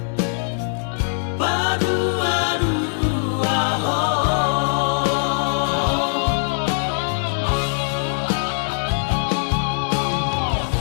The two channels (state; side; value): silent; right; digital silence